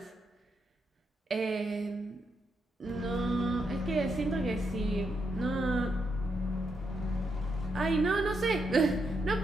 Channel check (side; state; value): both; normal; correlation 0.81